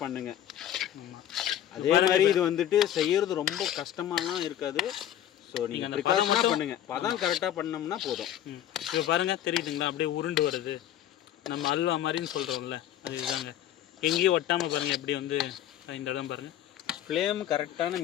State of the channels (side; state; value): right; quieter; 11.3 dB